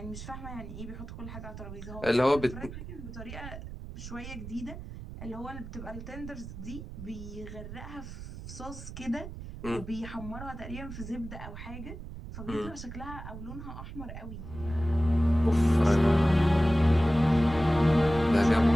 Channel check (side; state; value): right; noise; rumble, 11 dB below the sound